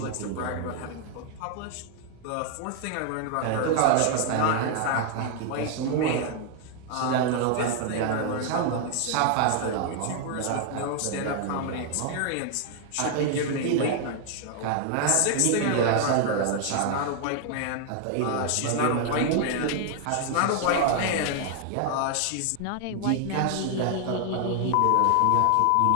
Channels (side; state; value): both; different; correlation 0.00